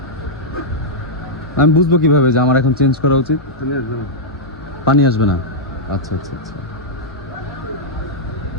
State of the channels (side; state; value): both; normal; correlation -0.08